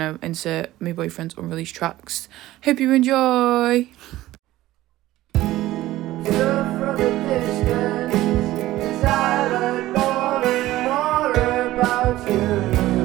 insert my boyfriend's unreleased tracks. Hope you enjoy.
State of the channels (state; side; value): quieter; left; 16.0 dB